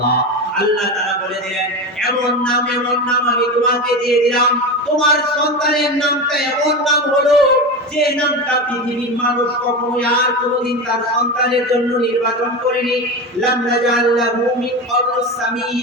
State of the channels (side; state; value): both; normal; correlation 0.22